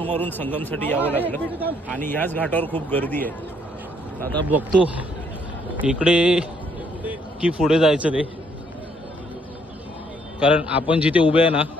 मारून संगमसाठी यावं लागलं आणि ह्याच घाटावर खूप गर्दी आहे। आता बघतो इकडे की पुढे जायचं ते, कारण आपण जिथे उभे आहे ना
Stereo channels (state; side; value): normal; both; correlation 0.68